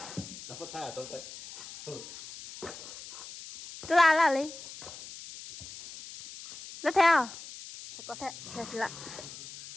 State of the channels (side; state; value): left; noise; hiss, 13 dB below the sound